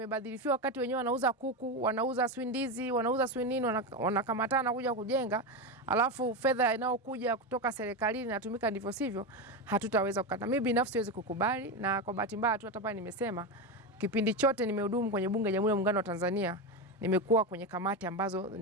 wakati wenyewe wanauza kuku, wanauza swindizi, wanauza swinini, wanakamatana kuja kujenga, alafu fedha inayokuja kutoka serikalini inatumika ndivyo sivyo, hatutaweza kukata. Mimi binafsi siwezi kukubali, na kwa bahati mbaya tu hata pale nimesema kipindi chote nimehudumu kwenye bunge la Jamhuri ya Muungano wa Tanzania, nimekuwa kwenye kamati ambazo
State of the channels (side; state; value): both; normal; correlation 0.14